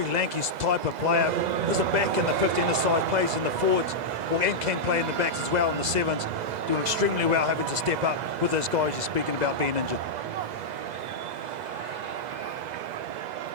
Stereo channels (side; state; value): left; late; 2.0 ms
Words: lanky type of player. There's a back in the 15 side, plays in the forwards, and can play in the backs as well in the 7s. Doing extremely well, having to step up with those guys you're speaking about being injured.